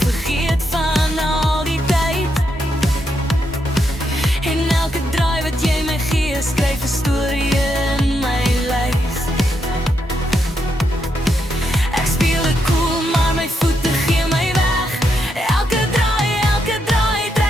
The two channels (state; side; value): normal; both; correlation 0.81